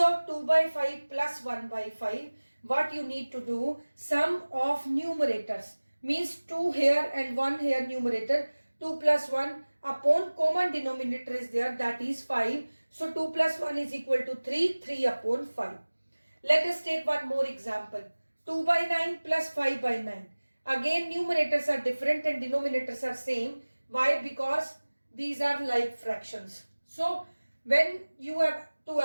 2 by 5 plus 1 by 5, what you need to do, sum of numerators means 2 here and 1 here numerator, 2 plus 1 upon common denominator is there, that is 5. So 2 plus 1 is equal to 3, 3 upon 5. Let us take one more example, 2 by 9 plus 5 by 9. Again numerators are different and denominators are same. Why? Because these are like fractions. So when you have to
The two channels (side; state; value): both; inverted; correlation -1.00